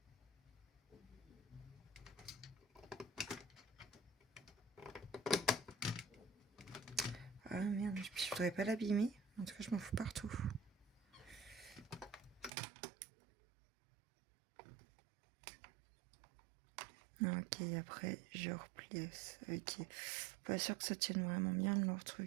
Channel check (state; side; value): drops out; left; at 12.5 s